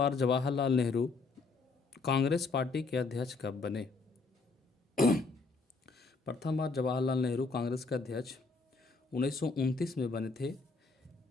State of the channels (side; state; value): right; quieter; 4.0 dB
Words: जवाहरलाल नेहरू कांग्रेस पार्टी के अध्यक्ष कब बने? प्रथम बार जवाहरलाल नेहरू कांग्रेस के अध्यक्ष 1929 में बने थे,